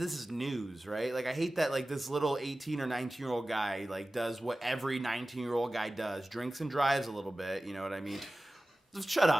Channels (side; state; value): both; normal; correlation 0.96